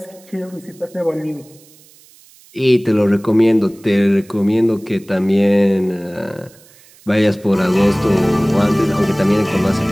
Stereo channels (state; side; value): noise; right; hiss, 27 dB below the sound